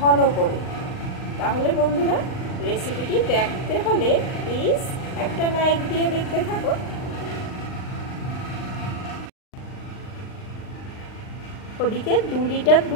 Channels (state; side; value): late; right; 39 ms